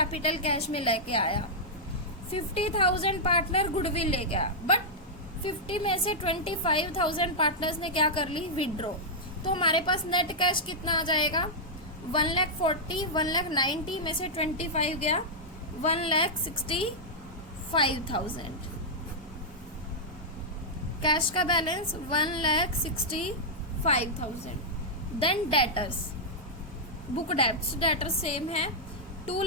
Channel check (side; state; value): both; normal; correlation -0.08